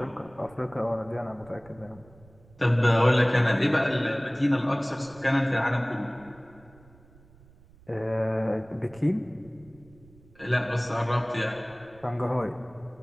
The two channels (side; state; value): right; noise; rumble, 25 dB below the sound